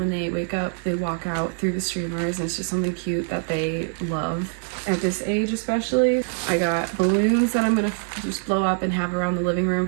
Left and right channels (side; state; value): left; silent; 61 dB below the other